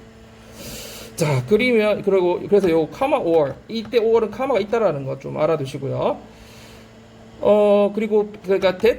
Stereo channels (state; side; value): identical; both; correlation 1.00